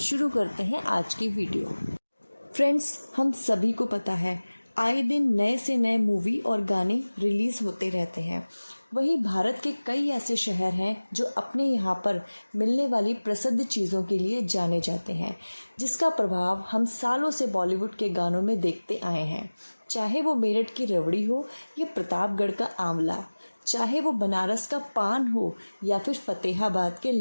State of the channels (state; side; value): inverted; both; correlation -1.00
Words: करते हैं आज की वीडियो। फ्रेंड्स, हम सभी को पता है आए दिन नए से नए मूवी और गाने रिलीज़ होते रहते हैं। वहीं भारत के कई ऐसे शहर हैं जो अपने यहाँ पर मिलने वाली प्रसिद्ध चीज़ों के लिए जाने जाते हैं, जिसका प्रभाव हम सालों से बॉलीवुड के गानों में देखते आए हैं। चाहे वो मेरठ की रबड़ी हो या प्रतापगढ़ का आंवला, चाहे वो बनारस का पान हो या फिर फतेहाबाद के